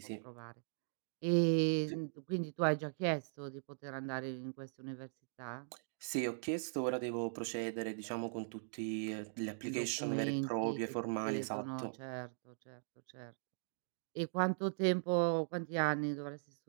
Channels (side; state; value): left; silent; digital silence